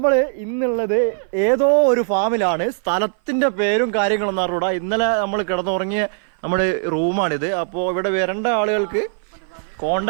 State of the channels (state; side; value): silent; left; 57 dB below the other